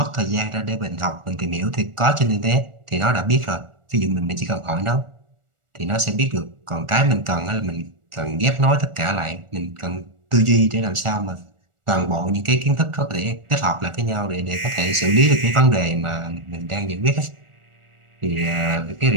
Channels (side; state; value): left; late; 1.4 ms